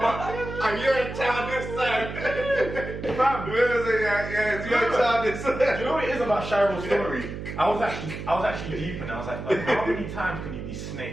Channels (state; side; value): noise; right; hum, 8 dB below the sound